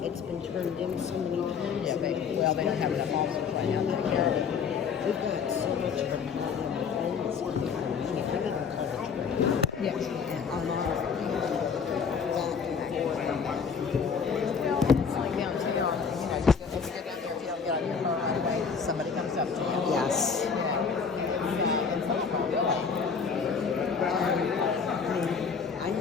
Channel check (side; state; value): right; quieter; 6.0 dB